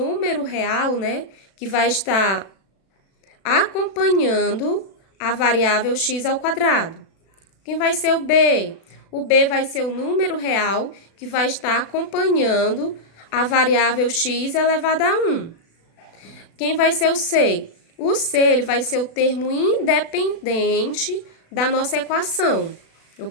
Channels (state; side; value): late; right; 36 ms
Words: real, né? Que vai estar acompanhando a variável x ao quadrado. Quem vai ser o B? O B vai ser o número real que vai estar acompanhando a variável x elevada a 1. Quem vai ser o C? O C, ele vai ser o termo independente da nossa equação,